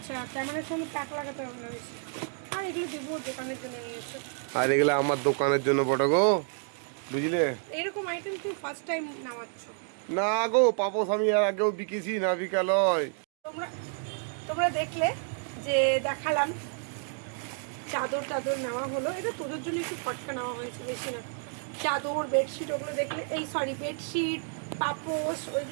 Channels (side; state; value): left; silent; 58 dB below the other